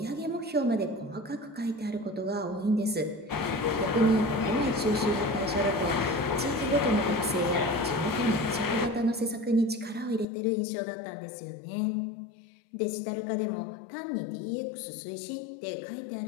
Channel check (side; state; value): right; drops out; at 10.2 s